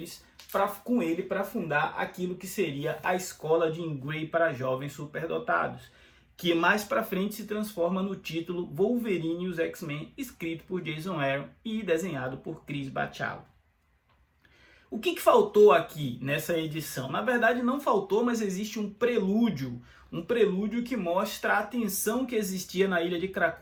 para fundar aquilo que seria a escola de Jean Grey para jovens superdotados, que mais para frente se transforma no título Wolverine e os X-Men, escrito por Jason Aaron e desenhado por Chris Bachalo. O que faltou aqui nessa edição? Na verdade não faltou, mas existe um prelúdio que mostra a tensão que existia na Ilha de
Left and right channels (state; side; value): identical; both; correlation 1.00